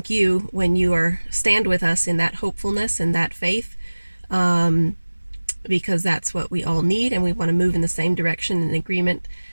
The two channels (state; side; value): inverted; both; correlation -1.00